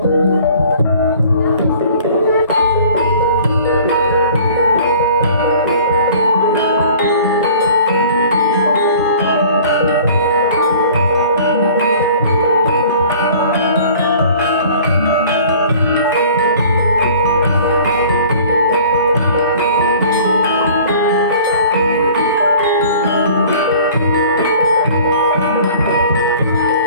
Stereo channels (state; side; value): inverted; both; correlation -0.49